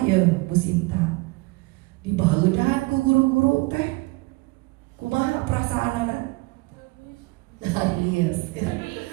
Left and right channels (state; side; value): quieter; left; 24.5 dB